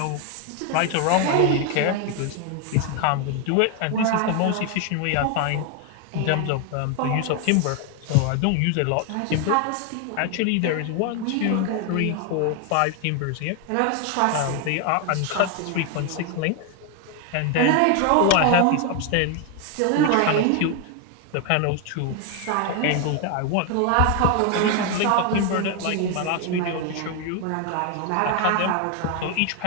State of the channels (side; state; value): both; different; correlation 0.01